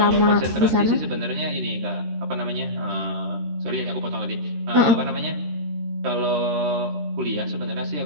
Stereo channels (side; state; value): left; late; 13 ms